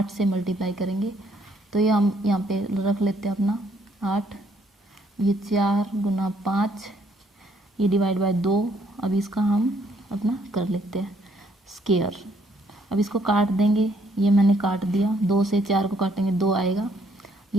से मल्टीप्लाई करेंगे, तो ये हम यहाँ पे रख लेते हैं अपना 8, ये 4 गुना 5, ये डिवाइड बाय 2। अब इसका हम अपना कर लेते हैं स्क्वायर। अब इसको काट देंगे, ये मैंने काट दिया, 2 से 4 को काटेंगे 2 आएगा,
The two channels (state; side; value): normal; both; correlation 0.68